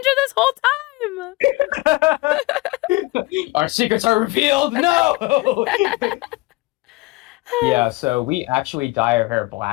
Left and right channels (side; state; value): right; quieter; 21.9 dB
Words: this whole Our secrets are revealed. No. time." Yeah, so we actually dye our hair